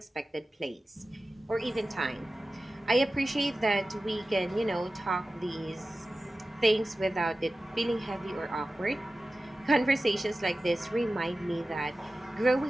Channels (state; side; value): normal; both; correlation 0.95